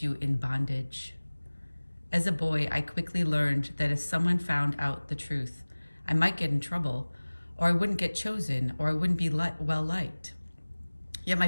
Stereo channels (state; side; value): inverted; both; correlation -1.00